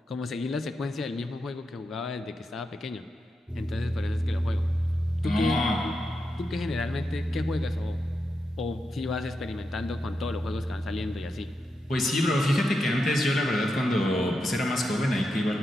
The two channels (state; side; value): normal; both; correlation 0.86